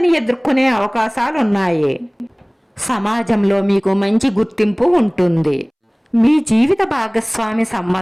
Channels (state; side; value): identical; both; correlation 1.00